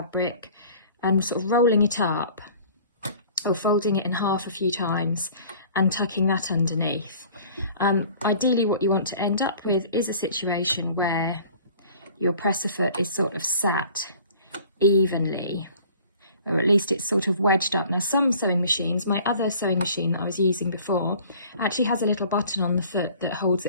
and sort of rolling it up, or folding it in half a few times and tucking that underneath. Ideally what you want to end up with is a situation where your presser foot is sort of sat evenly, or at least it's sort of wedged up. Now some sewing machines, my other sewing machine that I was using before, actually has a little button on the foot that holds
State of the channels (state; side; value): inverted; both; correlation -0.49